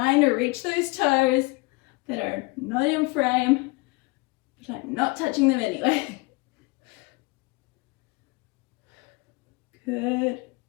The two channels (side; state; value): right; quieter; 25.3 dB